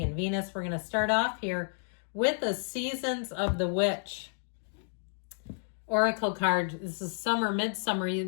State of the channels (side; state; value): right; silent; digital silence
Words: and Venus. We're going to start off here with the Seasons of the Witch oracle card. This is summer, midsummer.